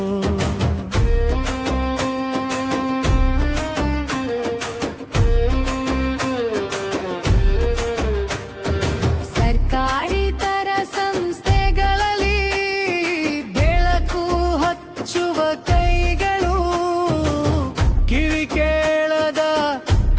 ಸರ್ಕಾರೇತರ ಸಂಸ್ಥೆಗಳಲ್ಲಿ ಬೆಳಕು ಹಚ್ಚುವ ಕೈಗಳು, ಕಿವಿ ಕೇಳದ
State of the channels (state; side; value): identical; both; correlation 1.00